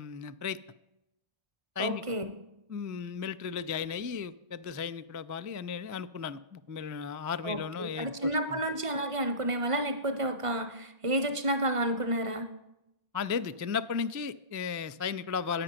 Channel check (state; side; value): late; left; 1.5 ms